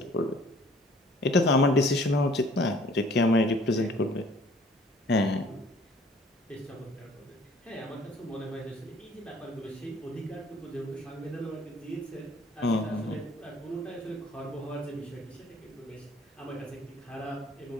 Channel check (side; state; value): both; normal; correlation 0.55